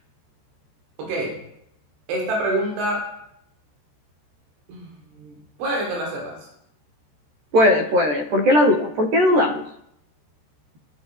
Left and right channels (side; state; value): left; late; 13 ms